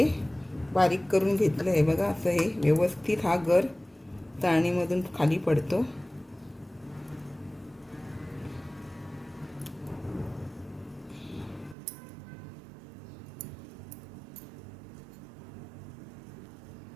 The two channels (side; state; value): left; drops out; at 11.8 s